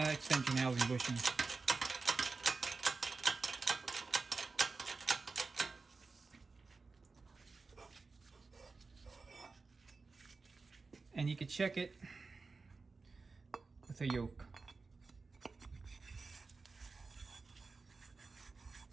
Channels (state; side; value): quieter; left; 4.1 dB